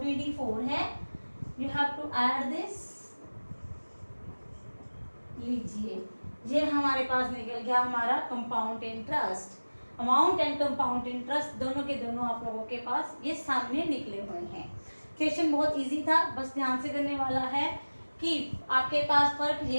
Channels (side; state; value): both; inverted; correlation -1.00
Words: है। You have to add this. लीजिए, ये हमारे पास निकल गया हमारा compound interest. Amount and compound interest दोनों के दोनों आप लोगों के पास ये सामने निकले हुए हैं। क्वेश्चन बहुत इजी था, बस ध्यान से करने वाला है कि आपके पास फर्क